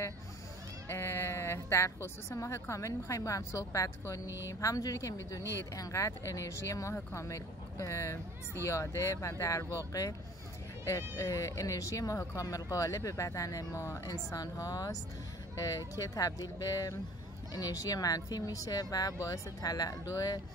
در خصوص ماه کامل میخوایم با هم صحبت کنیم. همونجوری که میدونید انقدر انرژی ماه کامل زیاده و در واقع انرژی ماه کامل غالب بدن ما انسان هاست که تبدیل به انرژی منفی میشه و باعث تلالو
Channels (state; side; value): normal; both; correlation 0.47